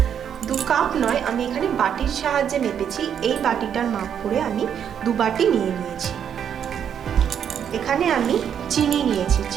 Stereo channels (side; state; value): left; quieter; 8.5 dB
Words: 2 কাপ নয়, আমি এখানে বাটির সাহায্যে মেপেছি। এই বাটিটার মাপ করে আমি 2 বাটি নিয়ে নিয়েছি। এখানে আমি চিনি নিয়েছি,